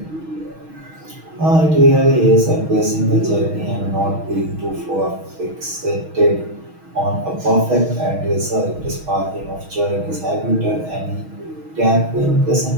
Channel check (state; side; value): late; left; 6.3 ms